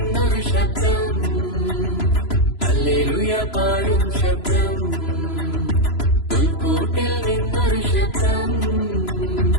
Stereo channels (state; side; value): late; right; 3.0 ms